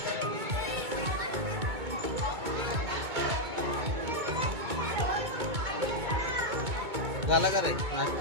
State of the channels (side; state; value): left; late; 2.2 ms